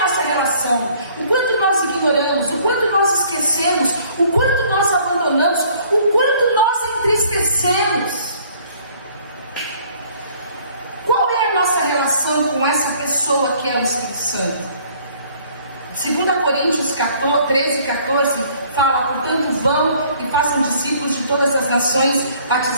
relação? O quanto nós ignoramos, o quanto nós esquecemos, o quanto nós abandonamos, o quanto nós entristecemos. Qual é a nossa relação com essa pessoa que é o Espírito Santo? 2 Coríntios 13:14 fala: portanto vão e façam discípulos de todas as nações,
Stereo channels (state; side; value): inverted; both; correlation -0.58